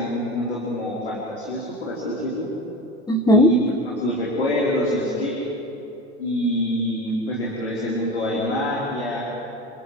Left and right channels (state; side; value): normal; both; correlation 0.30